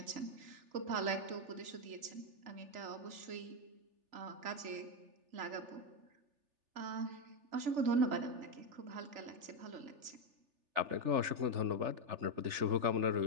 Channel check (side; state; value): left; late; 3.4 ms